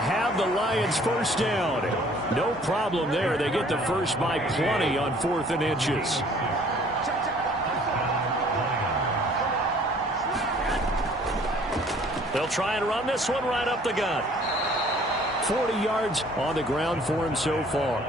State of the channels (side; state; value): both; normal; correlation 0.56